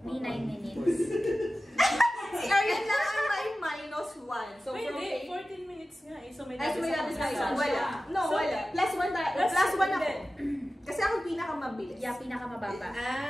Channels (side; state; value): both; normal; correlation 0.95